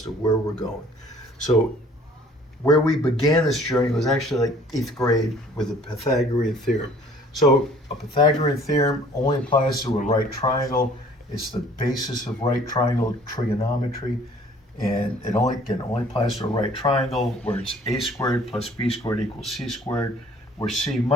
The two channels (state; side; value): normal; both; correlation 0.54